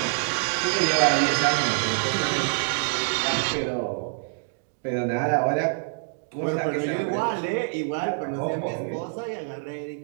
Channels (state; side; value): silent; left; digital silence